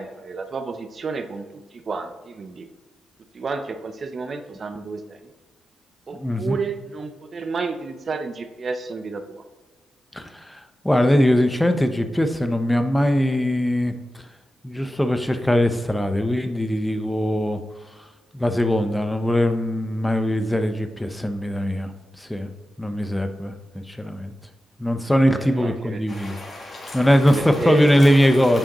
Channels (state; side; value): normal; both; correlation 0.93